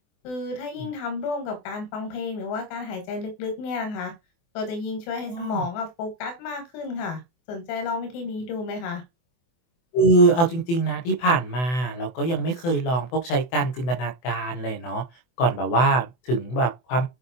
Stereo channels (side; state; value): right; late; 24 ms